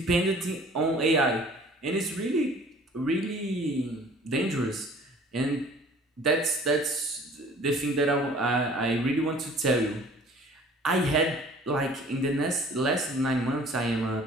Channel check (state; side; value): normal; both; correlation 0.50